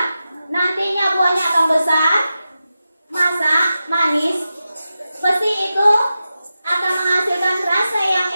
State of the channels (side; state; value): both; inverted; correlation -0.92